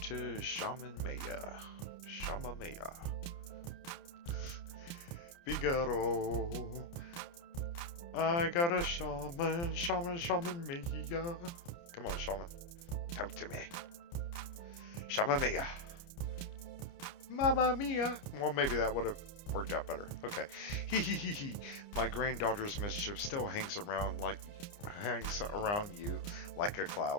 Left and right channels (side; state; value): right; late; 29 ms